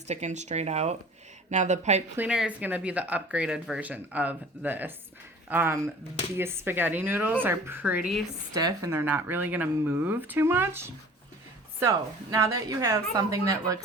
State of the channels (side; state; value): both; normal; correlation 0.45